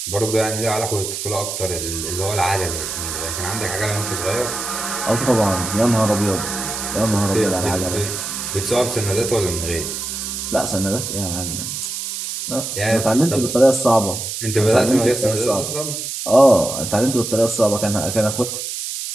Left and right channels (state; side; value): noise; right; hiss, 5 dB below the sound